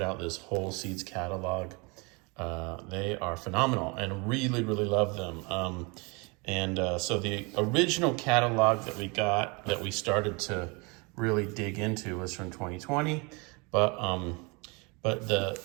out this whole seeds catalog. They are phenomenal and really, really love them. So the original catalog that we got, that we started to really dig into, was from 2020, but the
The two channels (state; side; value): quieter; left; 29.6 dB